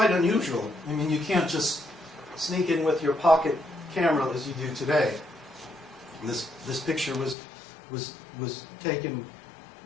unusual. I mean, you can't just sneak in with your pocket camera as you do today. And this picture was taken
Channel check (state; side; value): drops out; right; at 7.4 s